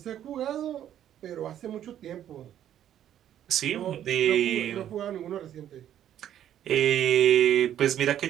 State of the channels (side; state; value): left; quieter; 10.8 dB